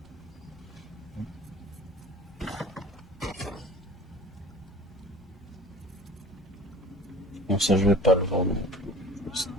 Bon, ça je vais pas le vendre non plus. Je vais le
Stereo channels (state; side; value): normal; both; correlation 0.44